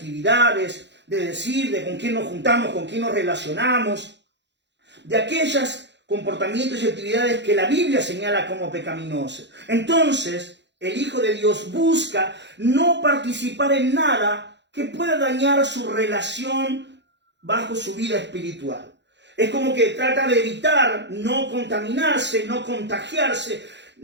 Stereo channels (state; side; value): late; left; 0.52 ms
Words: de decir de con quién nos juntamos, con quién nos relacionamos, de aquellos comportamientos y actividades que la Biblia señala como pecaminosas. Entonces, el Hijo de Dios busca no participar en nada que pueda dañar su relación bajo su vida espiritual. Es como que trata de evitar no contaminarse, no contagiarse,